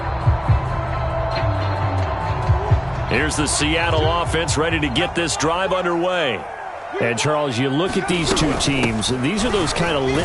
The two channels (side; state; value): both; identical; correlation 1.00